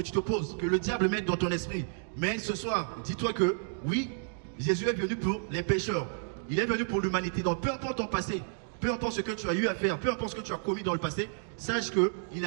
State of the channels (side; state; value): left; silent; digital silence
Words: tu te poses, que le diable met dans ton esprit. Mais ce soir, dis-toi que oui, Jésus est venu pour les pécheurs. Il est venu pour l'humanité. Donc peu importe ton passé, peu importe ce que tu as eu à faire, peu importe ce que tu as commis dans le passé, sache qu'il